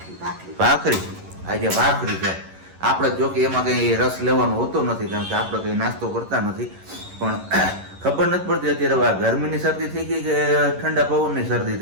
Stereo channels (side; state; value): left; late; 11 ms